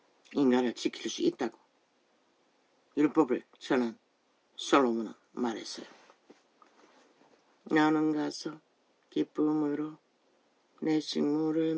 인간을 지킬 수 있다고 율법을 전한 솔로몬은 말했어요. 너는 가서 기쁨으로 내 식물을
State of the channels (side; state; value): both; identical; correlation 1.00